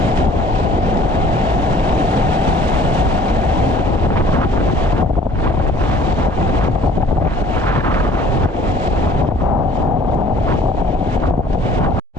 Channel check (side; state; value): both; normal; correlation 0.52